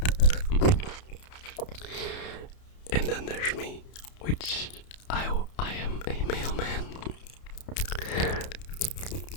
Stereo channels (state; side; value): late; right; 31 ms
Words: And then there's me, which I am a mailman.